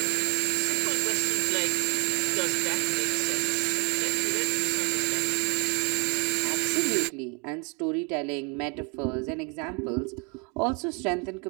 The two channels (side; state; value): left; quieter; 33.6 dB